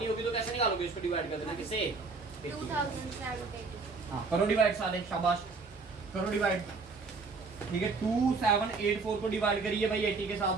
होगी तो कैसे निकालोगे? इसको डिवाइड कर देना किससे? 2784। हाँ करो डिवाइड सारे, शाबाश करो डिवाइड। ठीक है 2784 को डिवाइड करिए भाई 80 के साथ।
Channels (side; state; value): left; quieter; 4.2 dB